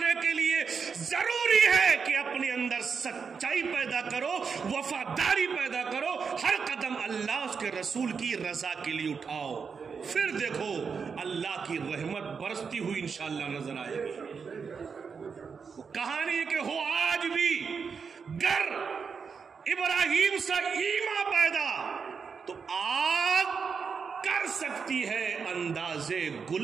کے لیے ضروری ہے کہ اپنے اندر سچائی پیدا کرو، وفاداری پیدا کرو، ہر قدم اللہ اس کے رسول کی رضا کے لیے اٹھاؤ، پھر دیکھو اللہ کی رحمت برستی ہوئی انشاءاللہ نظر آئے گی۔ کہانی کہ ہو آج بھی گر ابراہیم سے ایمان پیدا تو آگ کر سکتی ہے اندازے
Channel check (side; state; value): left; quieter; 5.8 dB